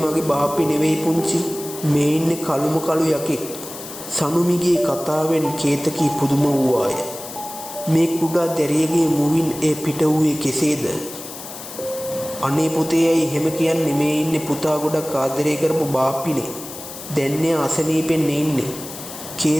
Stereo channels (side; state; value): left; noise; hiss, 12 dB below the sound